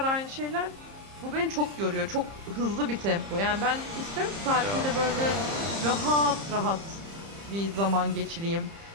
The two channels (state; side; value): late; left; 30 ms